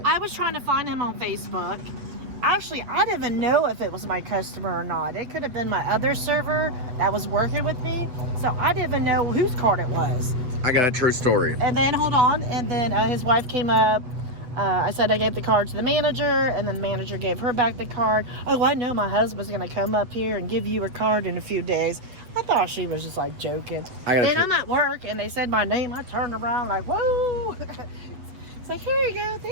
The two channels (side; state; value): left; late; 8.0 ms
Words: I was trying to find him on Facebook. Actually, I didn't even know if it was my customer or not. It could have been my other server that was working with me. So I didn't even know whose card it was. I got a true story. And then, hold on. And then his wife came up. I said I gave the card to the manager. And then the manager gave her back the card. Oh, I know my husband's going to come up here and give you a card in a few days. I thought she was just like joking. And I'm at work and they said my name. I turned around like, whoa. It's like, here you go.